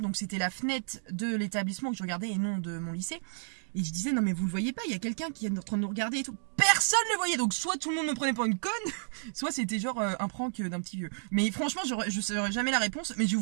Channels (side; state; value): left; silent; digital silence